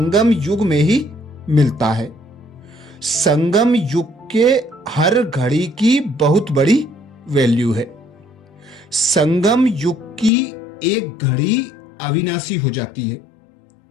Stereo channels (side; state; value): right; drops out; at 10.3 s